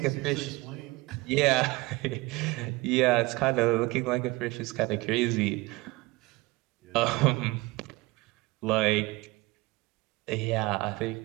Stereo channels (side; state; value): left; quieter; 22.4 dB